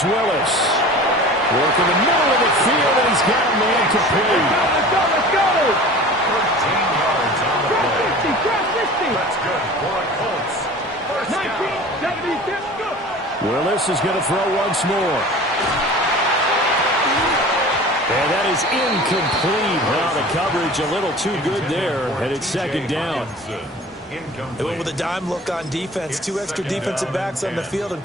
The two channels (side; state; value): both; normal; correlation 0.40